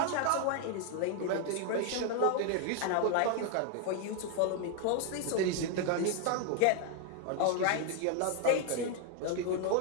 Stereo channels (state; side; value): different; both; correlation 0.00